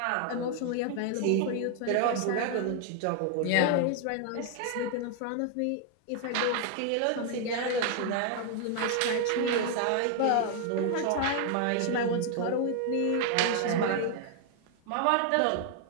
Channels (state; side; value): different; both; correlation 0.00